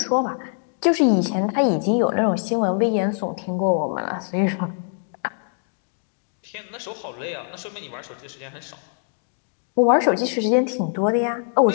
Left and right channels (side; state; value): right; silent; digital silence